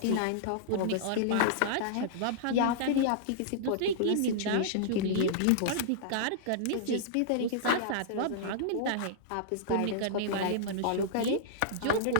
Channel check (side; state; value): both; different; correlation -0.02